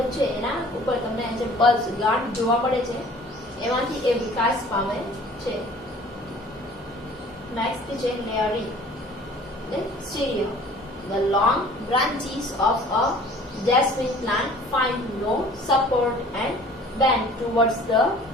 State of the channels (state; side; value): normal; both; correlation 0.49